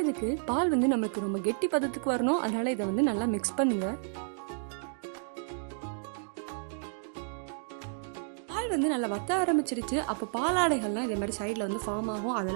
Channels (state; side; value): silent; left; digital silence